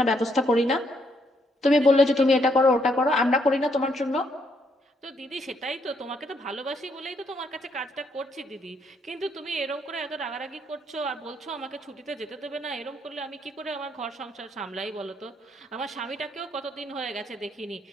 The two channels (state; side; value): normal; both; correlation 0.73